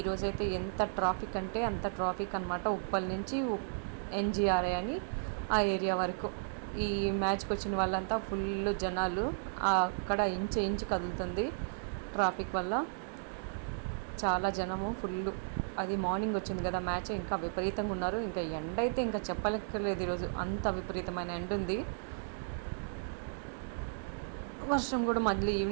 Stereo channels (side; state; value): left; silent; digital silence